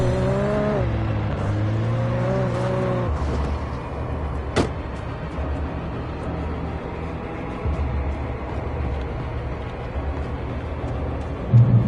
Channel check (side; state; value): both; identical; correlation 1.00